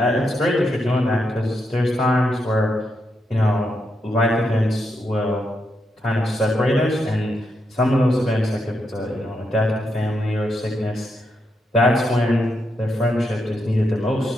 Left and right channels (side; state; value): both; normal; correlation 0.82